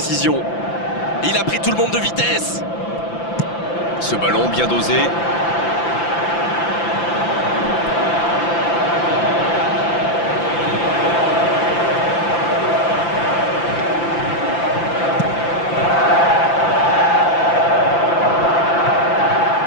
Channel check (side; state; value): right; late; 5.9 ms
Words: Il a pris tout le monde de vitesse. Ce ballon bien dosé.